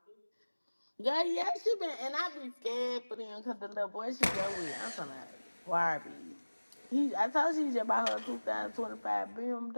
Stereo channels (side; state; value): both; inverted; correlation -1.00